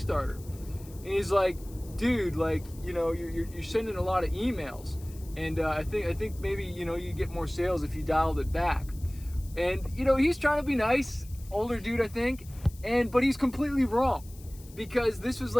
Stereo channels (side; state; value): left; noise; hiss, 22 dB below the sound